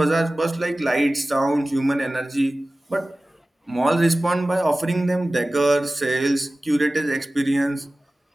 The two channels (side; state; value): both; normal; correlation 0.97